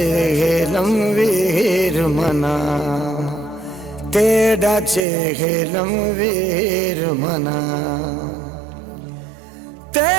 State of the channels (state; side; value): drops out; left; at 5.1 s